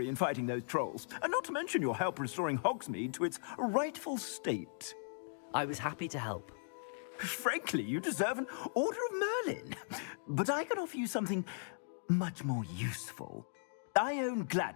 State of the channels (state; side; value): silent; right; digital silence